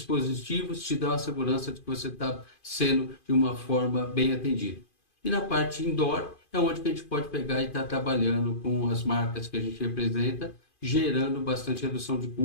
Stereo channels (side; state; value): right; late; 2.5 ms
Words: te dão a segurança de que você está sendo de uma forma bem atendido. E na parte indoor é onde que a gente pode pegar e estar trabalhando com as marcas que a gente representa, gerando bastante redução de